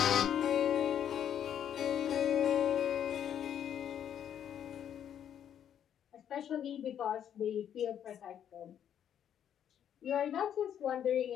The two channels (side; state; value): right; quieter; 9.5 dB